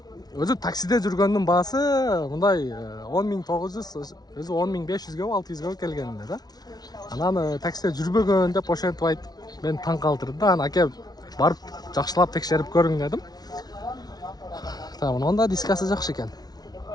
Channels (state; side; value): late; right; 0.19 ms